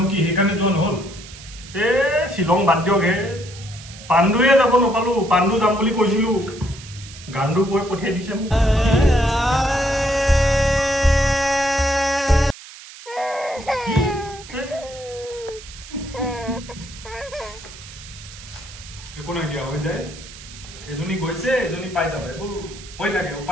কি সেইকাৰণে যোৱা নহ'ল শ্বিলং বাদ দিয়ক হে পাণ্ডুৱে যাব নাপালো পাণ্ডু যাম বুলি কৈছিলো গাণ্ডু কৈ পঠিয়াই দিছে মোক একো নাই দিয়া হৈ যায় এজনী গৈছে এজনী পাই যাব এইবোৰ হৈ থাকে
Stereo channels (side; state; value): right; noise; hiss, 17 dB below the sound